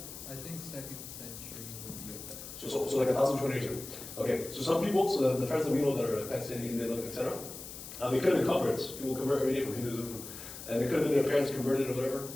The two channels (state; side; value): noise; left; hiss, 12 dB below the sound